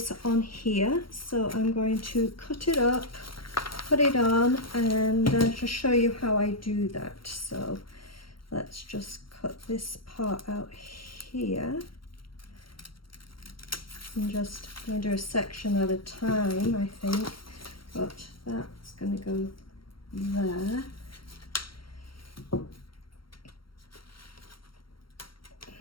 on here, so I'm going to cut it up, put it on, and just show you how I do that. So let's just cut this part out here, and just going to do a section at a time, I think, but that's going to go there.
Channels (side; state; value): right; late; 0.73 ms